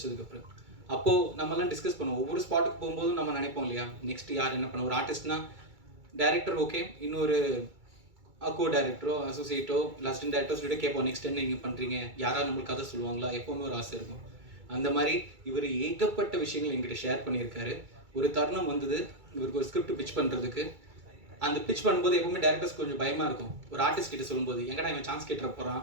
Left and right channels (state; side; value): late; left; 2.3 ms